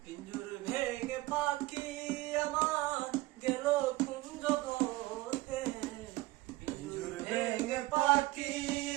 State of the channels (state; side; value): quieter; left; 19.4 dB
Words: পিঞ্জুর ভেঙে পাখি আমার গেল কোন জগতে। পিঞ্জুর ভেঙে পাখি